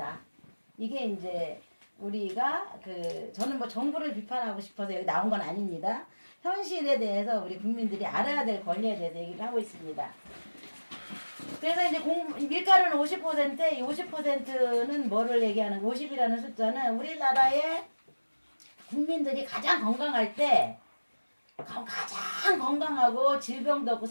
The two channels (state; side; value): inverted; both; correlation -1.00